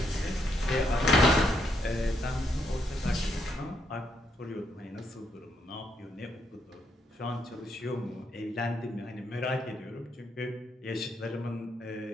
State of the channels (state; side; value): normal; both; correlation 0.75